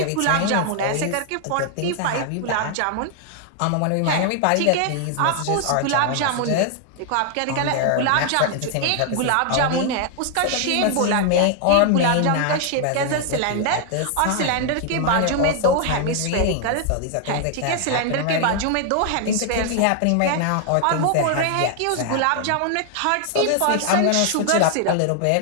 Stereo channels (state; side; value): different; both; correlation 0.00